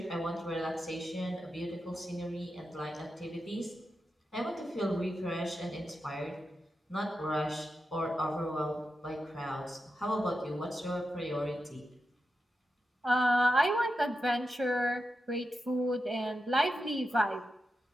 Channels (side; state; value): both; normal; correlation 0.89